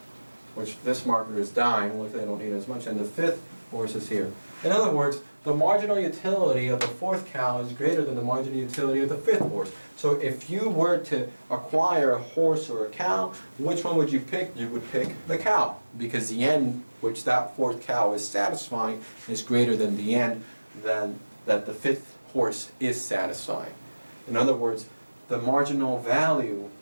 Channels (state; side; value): inverted; both; correlation -1.00